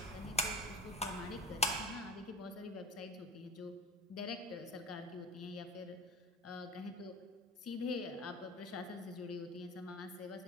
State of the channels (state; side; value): normal; both; correlation 0.34